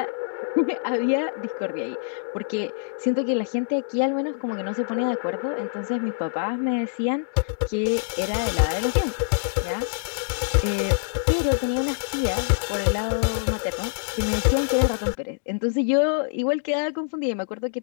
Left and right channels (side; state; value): right; silent; digital silence